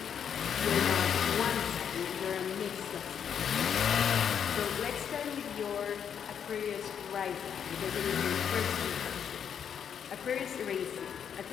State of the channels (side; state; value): right; quieter; 8.0 dB